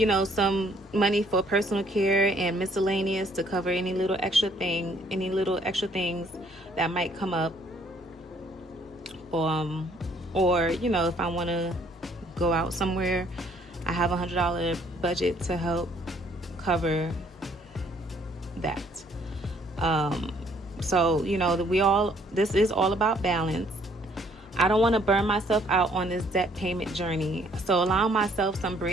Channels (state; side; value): normal; both; correlation 0.63